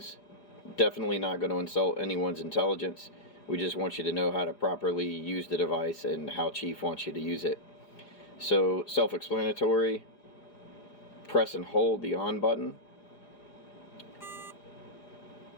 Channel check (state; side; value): late; right; 4.9 ms